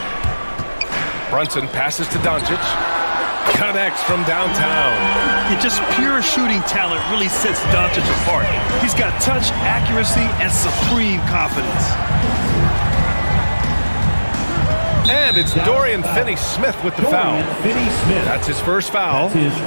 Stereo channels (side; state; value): both; inverted; correlation -1.00